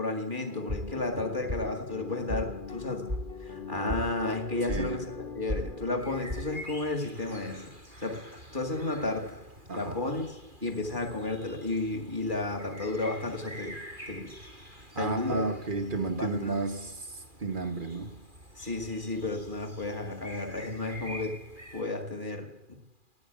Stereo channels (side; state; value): left; late; 2.4 ms